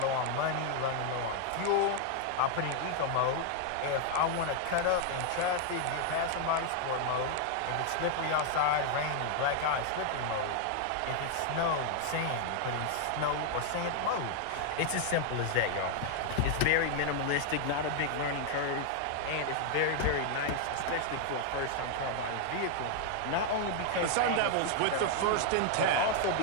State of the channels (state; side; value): different; both; correlation 0.00